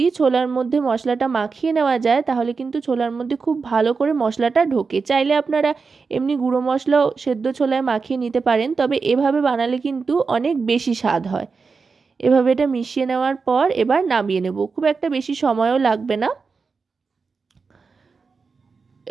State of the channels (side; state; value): left; quieter; 4.8 dB